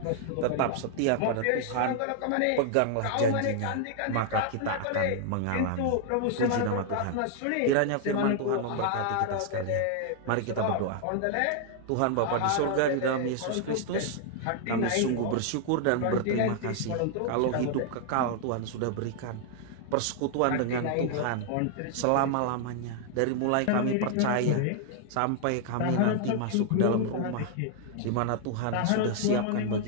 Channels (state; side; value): different; both; correlation 0.00